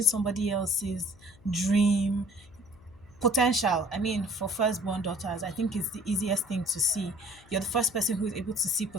somebody else's dream potential. I mean, for firstborn daughters, I think it's the easiest thing to see. You're the first person who is able to see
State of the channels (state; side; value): noise; left; hum, 26 dB below the sound